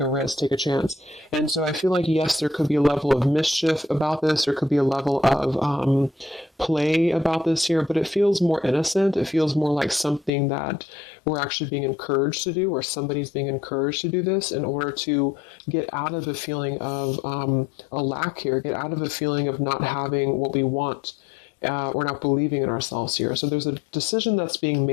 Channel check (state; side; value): drops out; right; at 10.3 s